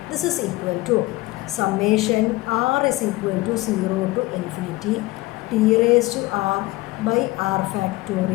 This is equal to summation r is equal to 0 to infinity t⁻r/r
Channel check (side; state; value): right; quieter; 20.1 dB